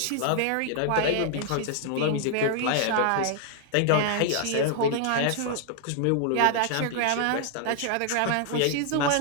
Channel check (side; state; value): both; different; correlation 0.00